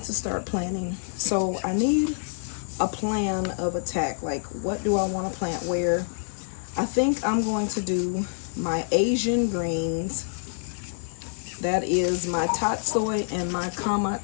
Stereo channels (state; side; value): silent; right; 60 dB below the other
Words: to start planting. So I need a plan of attack. Like, what do I want to plant where? I think I'm going to do my Asian greens. That is my tatsoi and my